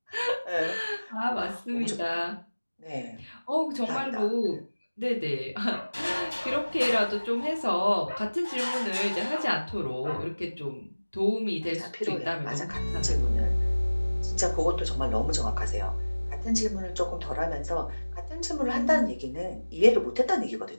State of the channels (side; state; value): both; inverted; correlation -1.00